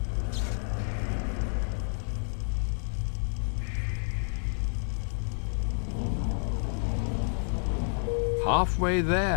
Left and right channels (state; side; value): silent; right; 58 dB below the other